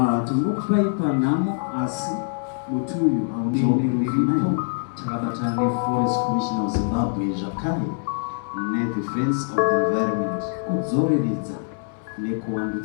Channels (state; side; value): silent; right; 63 dB below the other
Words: timokupaipa namo asi mutuyu aunionerivipo takabatane Forest Commission of Zimbabwe zvakare nedefense of the environment kudzoreredza